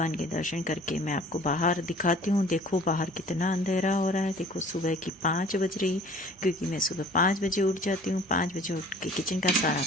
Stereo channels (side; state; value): both; normal; correlation 0.50